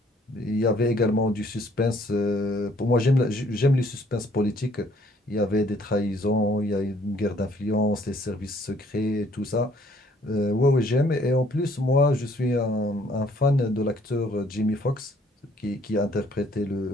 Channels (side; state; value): both; normal; correlation 0.62